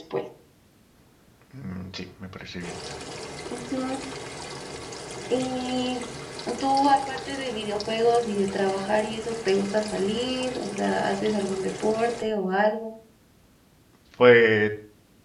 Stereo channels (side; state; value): both; identical; correlation 1.00